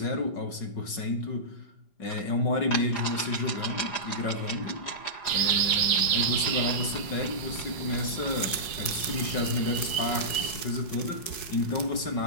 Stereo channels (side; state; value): right; late; 4.7 ms